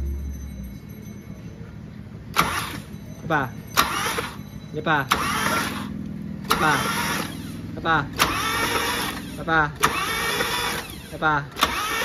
Pa. Hindi pa. Pa. Pa. Pa. Pa.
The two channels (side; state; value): both; identical; correlation 1.00